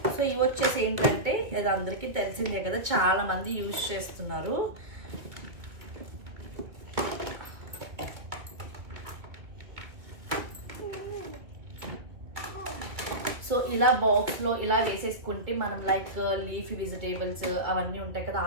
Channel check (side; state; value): left; late; 2.1 ms